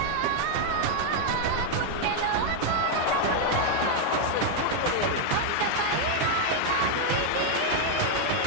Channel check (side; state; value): both; different; correlation 0.00